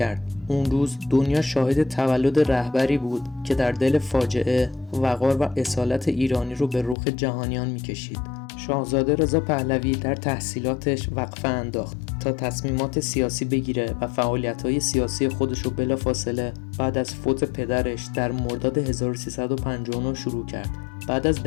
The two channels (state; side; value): drops out; right; at 7.0 s